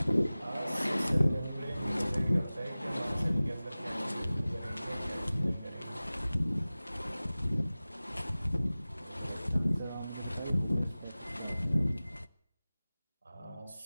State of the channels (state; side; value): inverted; both; correlation -0.98